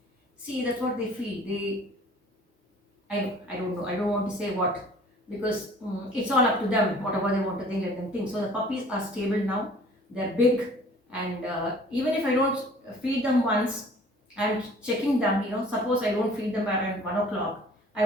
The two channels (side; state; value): both; normal; correlation 0.51